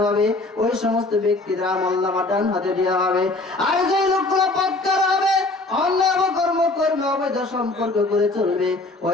হবে, ওই সমস্ত ব্যক্তিদের আমলনামা ডান হাতে দেওয়া হবে। আর যে লোকগুলো পাক্কার হবে, অন্যায় কর্ম করবে, অবৈধ সম্পর্ক করে চলবে,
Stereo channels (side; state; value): right; quieter; 3.0 dB